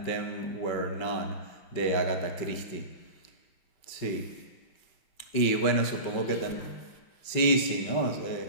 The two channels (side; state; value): right; late; 5.3 ms